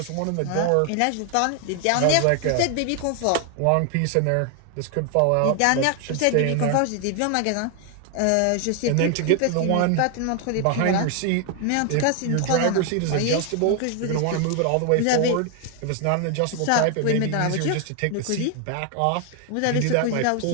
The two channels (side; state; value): both; different; correlation 0.00